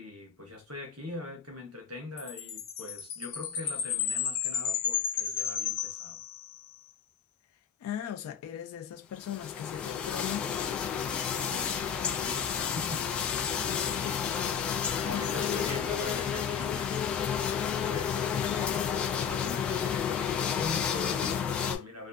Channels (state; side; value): quieter; right; 7.3 dB